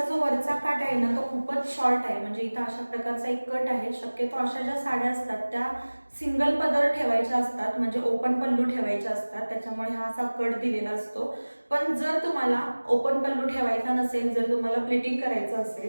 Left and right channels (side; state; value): both; inverted; correlation -1.00